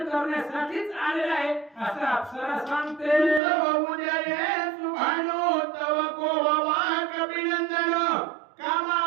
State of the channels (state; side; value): drops out; left; at 3.4 s